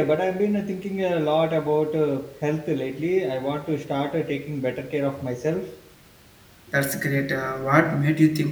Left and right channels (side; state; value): both; identical; correlation 1.00